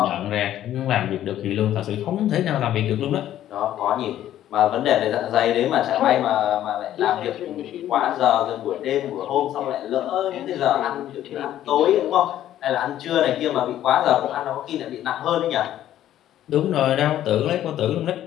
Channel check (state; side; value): quieter; right; 12.2 dB